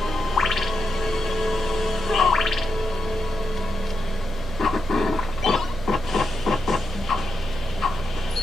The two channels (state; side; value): normal; both; correlation 0.85